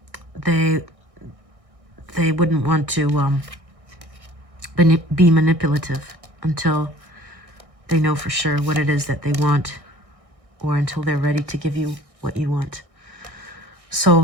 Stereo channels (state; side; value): late; left; 1.6 ms